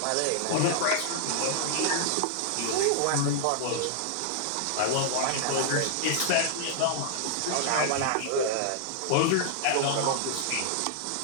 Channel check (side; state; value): both; different; correlation -0.01